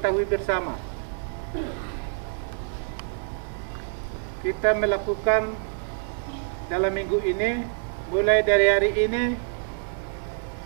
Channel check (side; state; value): left; silent; 61 dB below the other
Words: bersama. Kita melakukan dalam minggu ini, mulai dari hari ini